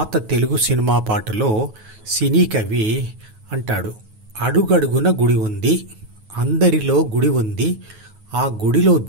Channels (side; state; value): left; late; 9.3 ms